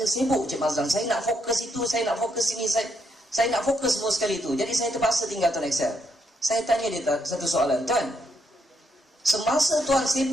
sibuk Cik Mazlan, saya nak fokus itu, saya nak fokus ini, saya nak fokus semua sekali tu. Jadi saya terpaksa tinggal Tuan Excel. Saya tanya dia satu soalan, tuan, semasa tuan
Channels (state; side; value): normal; both; correlation 0.76